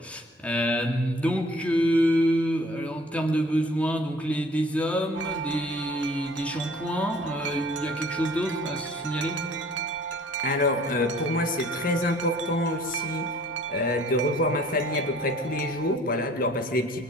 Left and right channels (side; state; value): both; normal; correlation 0.53